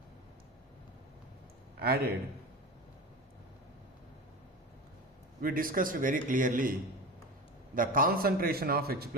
added. We discussed very clearly the concentration of H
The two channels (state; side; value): normal; both; correlation 0.28